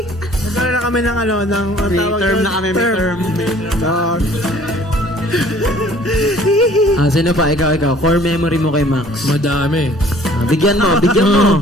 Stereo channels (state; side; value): normal; both; correlation 0.54